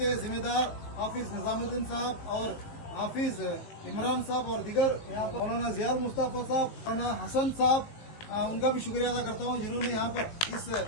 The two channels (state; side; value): late; right; 19 ms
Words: जिम्मेदार हाफिज निजामुद्दीन साहब और हाफिज इमरान साहब और दिगर यहाँ पर मौलाना जियाल मुस्तफा साहब, मौलाना हसन साहब, उनका भी शुक्रिया अदा करता हूँ जिन्होंने यहाँ पर इस